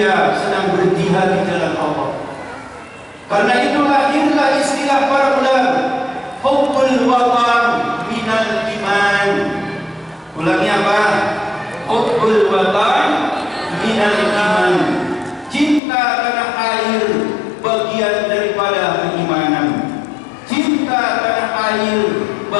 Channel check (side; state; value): right; drops out; at 15.8 s